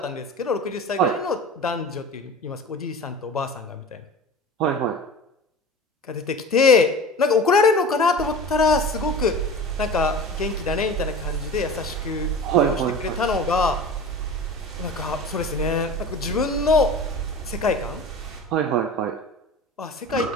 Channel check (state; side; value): normal; both; correlation 0.34